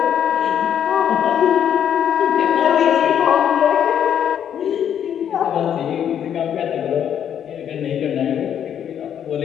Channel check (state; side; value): quieter; right; 9.2 dB